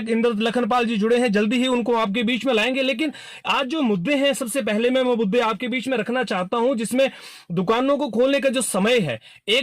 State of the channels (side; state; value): both; identical; correlation 1.00